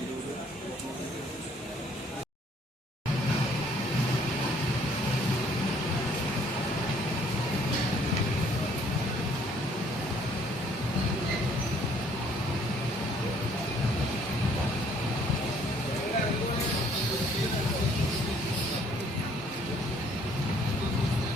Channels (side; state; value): both; normal; correlation 0.62